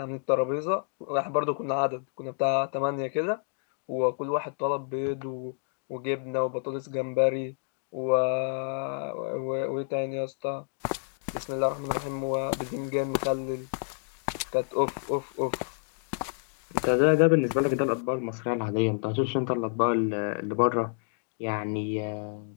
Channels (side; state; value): right; silent; digital silence